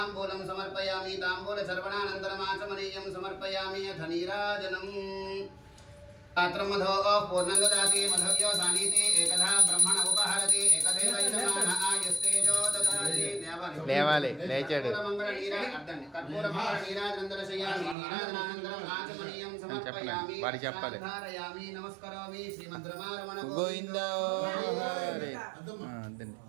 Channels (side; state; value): left; drops out; at 17.9 s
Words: సమర్పయామి. తాంబూల చర్వణానంతరం ఆచమనీయం సమర్పయామి. అథ నీరాజనం. పాత్రం మధో పూర్ణం దదాతి మధవ్యో సానీతి ఏకదా బ్రహ్మణ ఉపహరతి ఏకదేవ యజమాన ఆయుస్తేజో దదాతి. లేవాలి లేచాడు. కర్పూర మంగళ నీరాజనందరశయామి. నీరాజనానంతరం ఆచమనీయం సమర్పయామి. వాడి చెప్పాలి. ధారయామి నమస్కరోమి. శ్రీమద్రమారమణ గోవిందా.